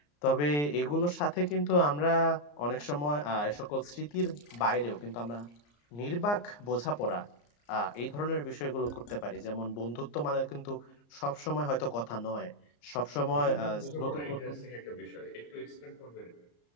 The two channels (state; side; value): late; right; 34 ms